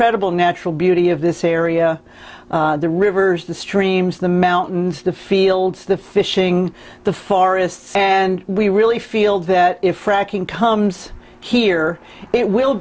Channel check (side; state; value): both; identical; correlation 1.00